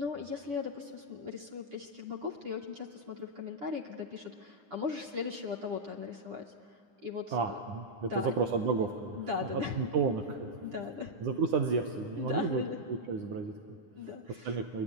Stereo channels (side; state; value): left; late; 9.9 ms